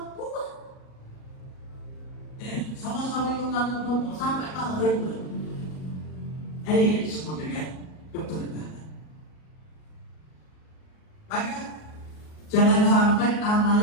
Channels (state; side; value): late; right; 38 ms